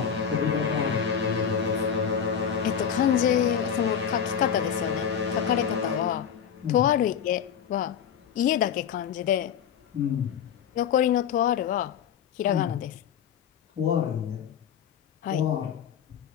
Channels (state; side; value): quieter; right; 8.1 dB